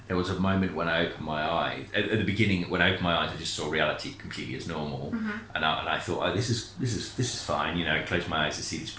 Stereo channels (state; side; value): identical; both; correlation 1.00